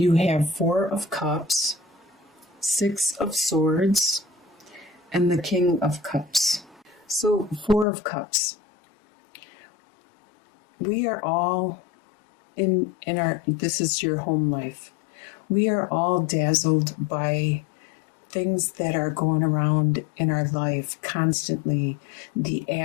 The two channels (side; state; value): right; drops out; at 7.9 s